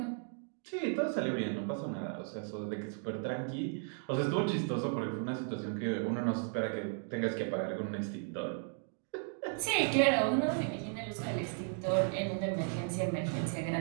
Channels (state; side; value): silent; left; 54 dB below the other